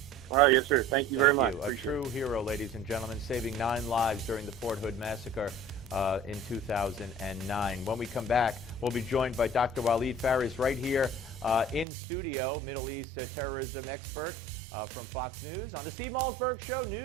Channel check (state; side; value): drops out; left; at 11.9 s